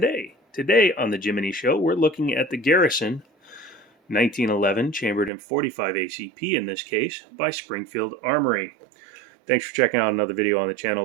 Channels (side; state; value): left; drops out; at 5.3 s